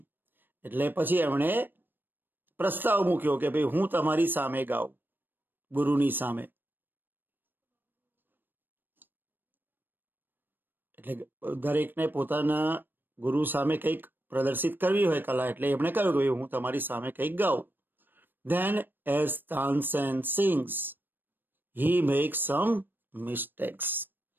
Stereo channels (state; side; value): late; left; 0.094 ms